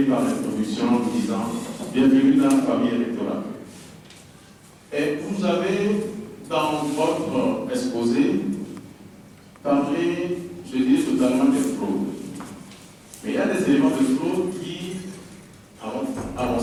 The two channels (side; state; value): both; identical; correlation 1.00